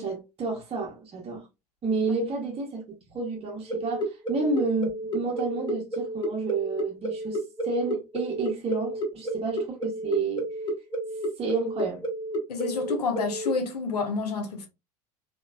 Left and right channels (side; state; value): both; normal; correlation 0.25